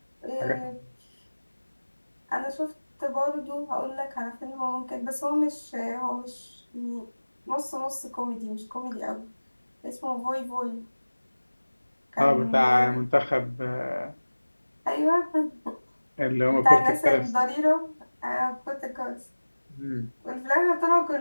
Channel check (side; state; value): both; inverted; correlation -1.00